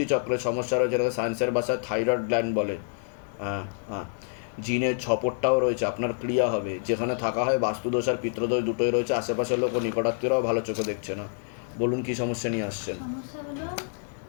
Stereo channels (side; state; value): right; silent; 60 dB below the other